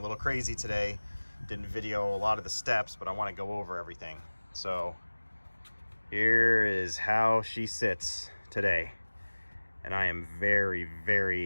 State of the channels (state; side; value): inverted; both; correlation -1.00